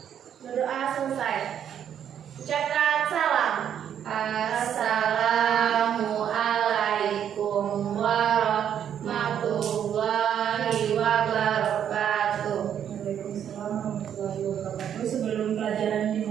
Berdoa selesai. Ucapkan salam. Assalamualaikum warahmatullahi wabarakatuh. Waalaikumsalam warahmatullahi wabarakatuh. Sebelum pelajaran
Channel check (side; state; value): left; quieter; 9.2 dB